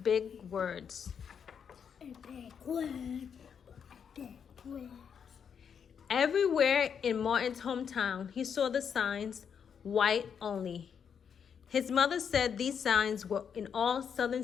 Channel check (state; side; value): quieter; right; 7.3 dB